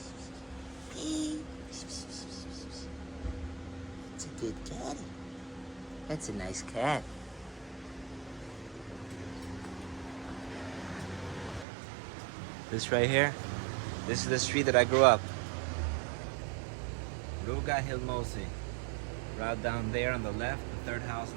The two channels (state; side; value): drops out; left; at 11.7 s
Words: Hey. It's a good caddy. That's a nice cat. This right here, this is the street that I grew up. Ruga Hilmosi. Right down there on the left, the third house